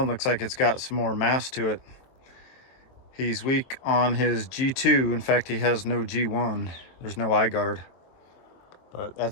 looks like it's got some more mass to it. He's weak on his G2. In fact, he has no G1. There's no eye guard. But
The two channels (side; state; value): right; late; 23 ms